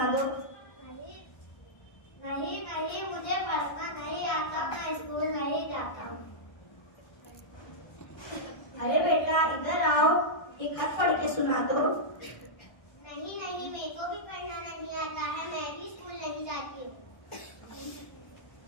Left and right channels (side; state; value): right; late; 1.6 ms